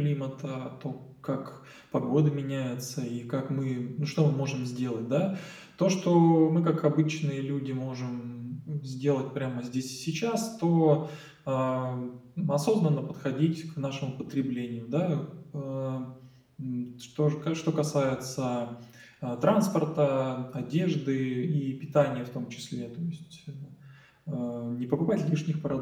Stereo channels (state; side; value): identical; both; correlation 1.00